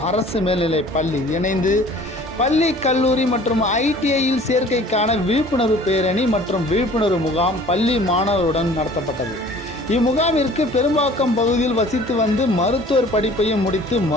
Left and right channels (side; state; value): both; normal; correlation 0.49